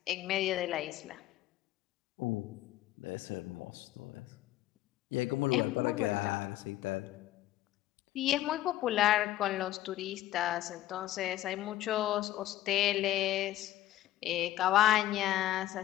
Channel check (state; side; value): quieter; right; 14.2 dB